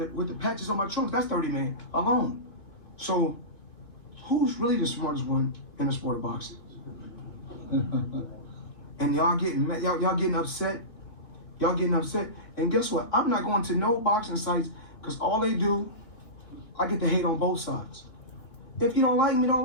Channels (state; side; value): late; right; 3.1 ms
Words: patches on my trunks, that's 30 million alone. So who's really the smartest one in the sport of boxing? And y'all getting upset. Y'all getting upset. And guess what? I'm not going to no boxing sites because all they do, I get to hate on both sides. If you don't like me, don't